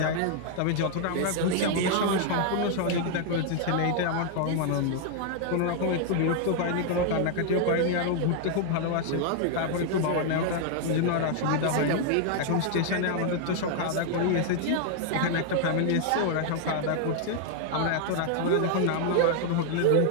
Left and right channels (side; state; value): both; different; correlation 0.00